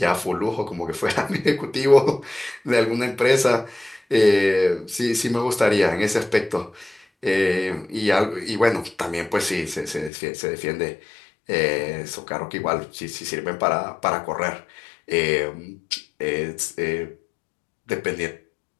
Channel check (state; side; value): drops out; right; at 10.1 s